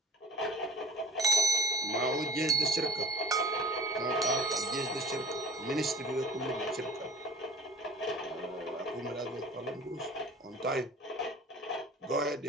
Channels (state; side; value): normal; both; correlation 0.42